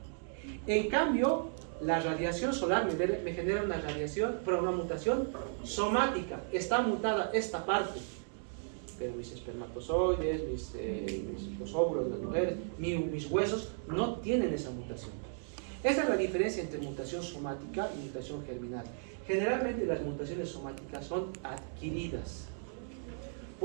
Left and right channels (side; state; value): left; silent; digital silence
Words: En cambio, la radiación solar me genera una una mutación somática. Está mutada esta parte. Pero mis espermatozoides, los óvulos de las mujeres, mis huesos no tienen esa mutación. Esa es la diferencia entre mutación somática y mutación germinal. Generalmente las mutaciones somáticas son adquiridas